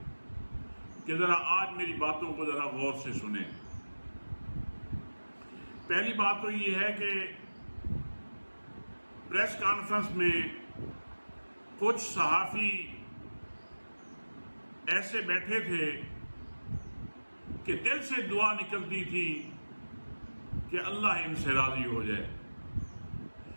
کہ ذرا آج میری باتوں کو ذرا غور سے سنیں۔ پہلی بات تو یہ ہے کہ پریس کانفرنس میں کچھ صحافی ایسے بیٹھے تھے کہ دل سے دعا نکلتی تھی کہ اللہ ان سے راضی ہو جائے،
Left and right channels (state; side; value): inverted; both; correlation -1.00